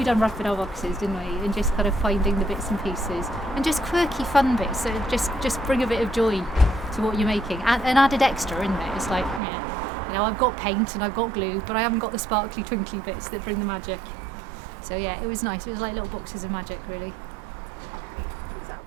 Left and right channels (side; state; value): left; drops out; at 9.4 s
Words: unwrapping our boxes, didn't we, and just kind of finding the bits and pieces and just quirky fun bits that just bring a bit of joy to what you're making, and added extra, isn't it? It's like, I've got paint and I've got glue, but I haven't got the sparkly twinkly bits that bring the magic. So yeah, it was nice. It was like little boxes of magic, really.